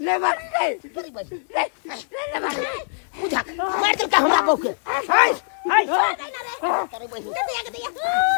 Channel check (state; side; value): silent; right; digital silence